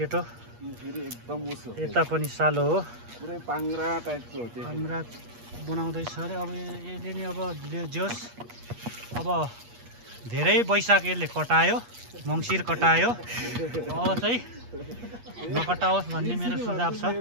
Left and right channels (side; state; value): left; late; 8.4 ms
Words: एकदम उसो यता पनि सालो हो पुरै पाङ्रा टाइपको हो त्यो हाम्रा बनाउँदैछ अरे अब यसले नि अब जोस् अब धेरै वैशाख यसले कटायो मङ्सिर कटायो अब चाहिँ नकटाओस् भन्ने मेरो सुझाव छ